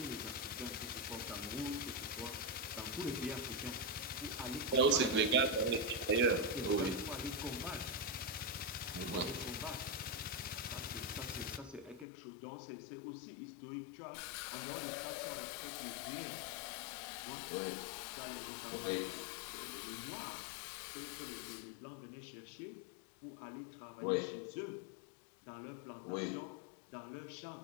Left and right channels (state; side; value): drops out; right; at 12.1 s